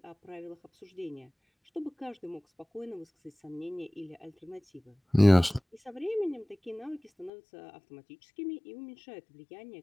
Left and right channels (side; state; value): right; drops out; at 7.3 s